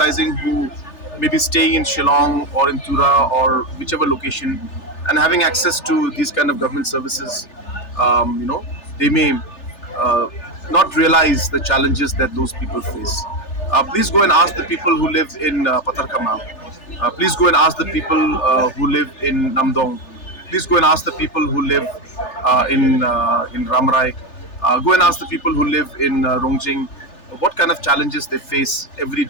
who may be staying in Shillong or in Tura or whichever location and having access to these kind of government services. They may uh, not realize the challenges that those people face. Please go and ask the people who live in Patarkama. Please go and ask the people who live in Namdong. Please go and ask the people who live in Ramrai. Go and ask the people who live in Rongjing what kind of challenges they face every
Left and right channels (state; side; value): late; right; 3.4 ms